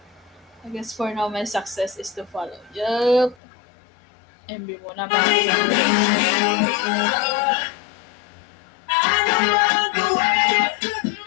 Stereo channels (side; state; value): right; drops out; at 3.4 s